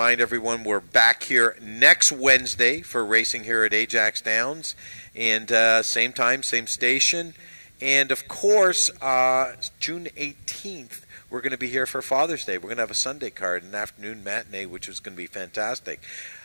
everyone we're back here next Wednesday for racing here at Ajax Downs, and same time, same station. And of course, June 18th, we're going to be here for Father's Day. We're going to have a Sunday card, an afternoon matinee, which is going to be fantastic.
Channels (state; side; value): inverted; both; correlation -1.00